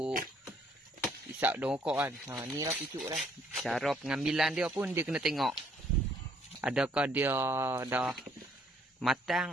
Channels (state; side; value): normal; both; correlation 0.65